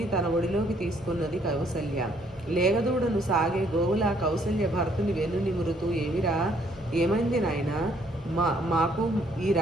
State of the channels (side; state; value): both; normal; correlation 0.66